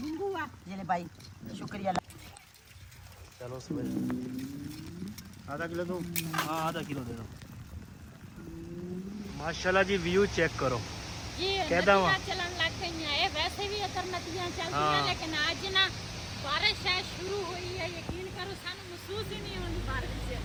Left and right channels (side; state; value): both; identical; correlation 1.00